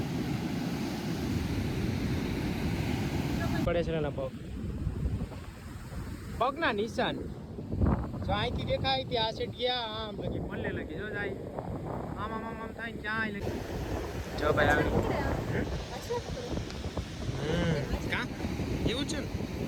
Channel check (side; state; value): both; identical; correlation 1.00